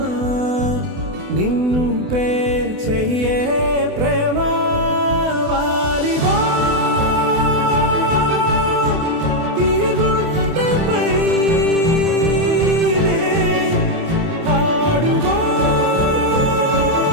నిన్ను పే చెయ్యే ప్రేమ వాలిబో ఈ గుండెపై ఆడుగో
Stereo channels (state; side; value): late; left; 28 ms